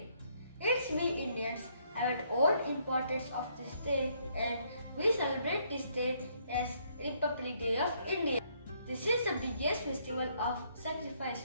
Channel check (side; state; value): both; inverted; correlation -0.69